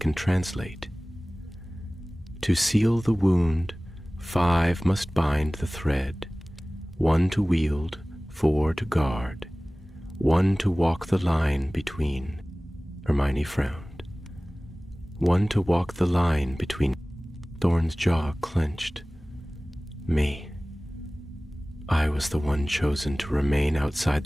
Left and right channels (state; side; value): normal; both; correlation 0.98